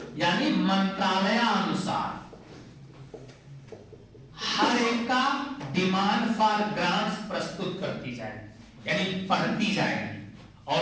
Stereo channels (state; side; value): identical; both; correlation 1.00